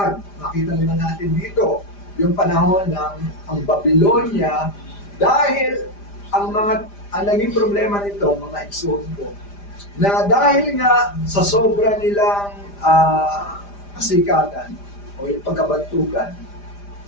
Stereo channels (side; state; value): right; late; 5.0 ms